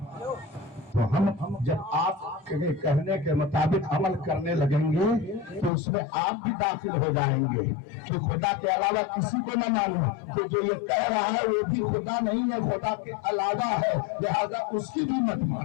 تو ہم جب آپ کے کہنے کے مطابق عمل کرنے لگیں گے تو اس میں آپ بھی داخل ہو جائیں گے کہ خدا کے علاوہ کسی کو نہ مانو. تو جو یہ کہہ رہا ہے وہ بھی خدا نہیں ہے, خدا کے علاوہ ہے, لہذا اس کی بھی مت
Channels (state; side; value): drops out; right; at 5.7 s